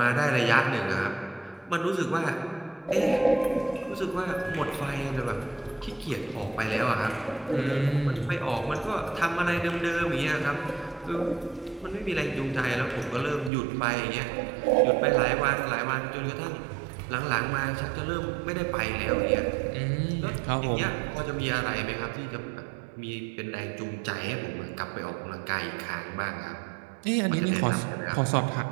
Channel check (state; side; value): drops out; left; at 13.5 s